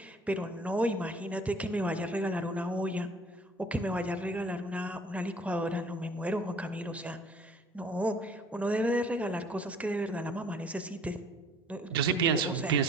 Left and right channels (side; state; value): both; normal; correlation 0.53